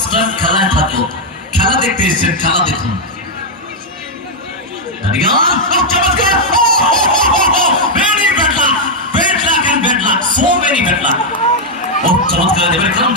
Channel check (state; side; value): normal; both; correlation -0.01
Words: খেলায় থাকলো খেলা দেখতে এসেছেন খেলা দেখুন